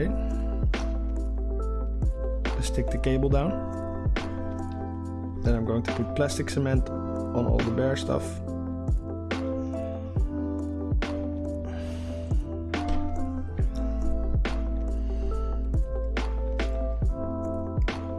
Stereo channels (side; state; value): both; identical; correlation 1.00